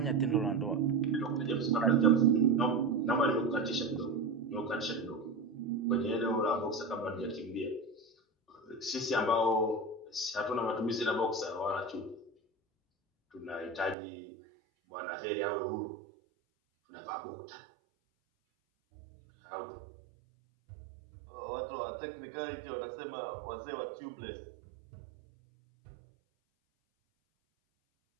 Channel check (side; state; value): left; drops out; at 14.0 s